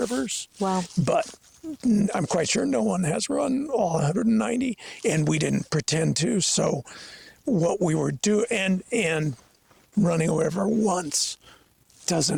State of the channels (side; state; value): both; identical; correlation 1.00